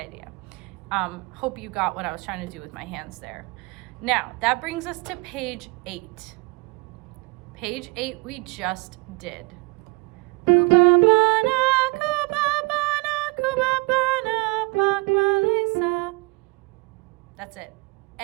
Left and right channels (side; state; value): left; quieter; 26.6 dB